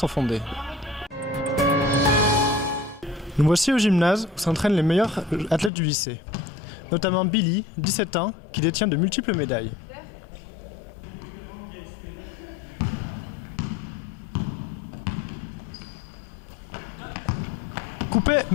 fondées. Nous voici au gymnase où s'entraînent les meilleurs athlètes du lycée. Notamment Billy, 17 ans, qui détient de multiples médailles. Coupé!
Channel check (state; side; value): drops out; right; at 5.7 s